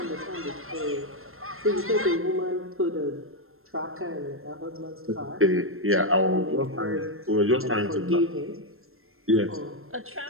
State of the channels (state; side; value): late; left; 0.61 ms